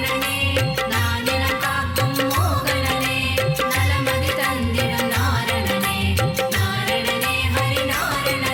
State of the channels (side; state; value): both; identical; correlation 1.00